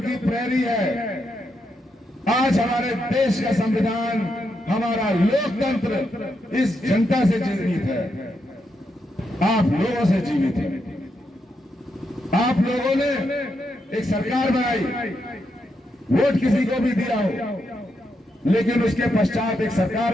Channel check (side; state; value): both; normal; correlation 0.82